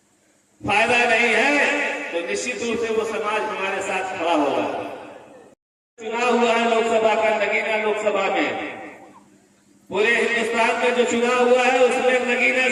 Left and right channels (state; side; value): identical; both; correlation 1.00